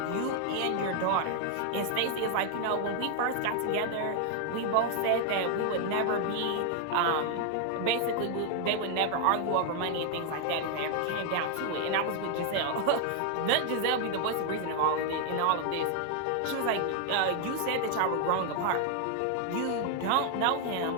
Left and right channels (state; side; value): different; both; correlation 0.00